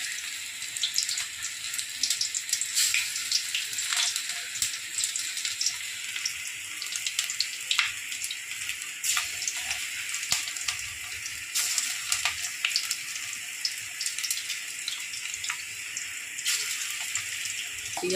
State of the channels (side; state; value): both; identical; correlation 1.00